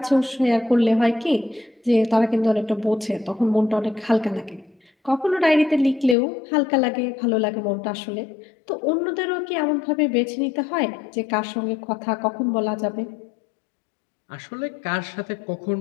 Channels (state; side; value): drops out; right; at 6.2 s